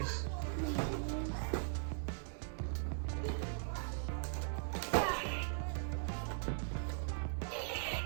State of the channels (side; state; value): left; silent; digital silence